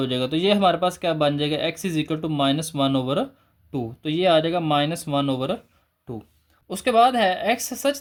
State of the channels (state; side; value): identical; both; correlation 1.00